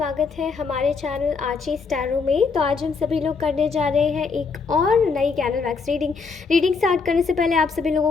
है हमारे चैनल आची स्टैरो में। तो आज हम सभी लोग करने जा रहे हैं एक और नई कैनल वैक्स रीडिंग स्टार्ट करने से पहले आप सभी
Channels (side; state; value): right; quieter; 4.9 dB